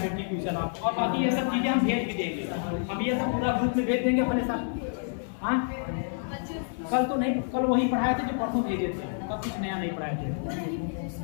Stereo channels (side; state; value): right; silent; 59 dB below the other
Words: क्वेश्चन आपको। और बाकी ये सब चीजें हम भेज भी देंगे, हम ये सब पूरा ग्रुप में भेज देंगे अपने साथ। हाँ कल तो नहीं, कल वही पढ़ाए थे जो परसों भेजे थे। आपका कुछ नया नहीं पढ़ाया थे,